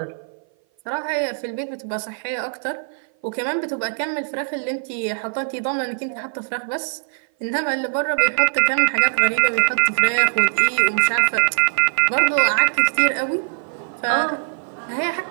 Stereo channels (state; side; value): silent; left; 57 dB below the other